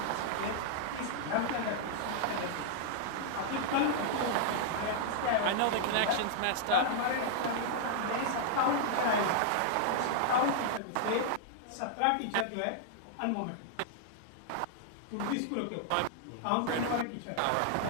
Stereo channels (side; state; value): both; different; correlation -0.01